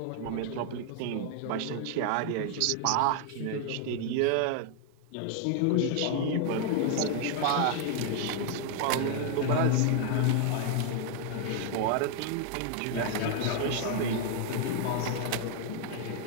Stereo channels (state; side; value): different; both; correlation 0.00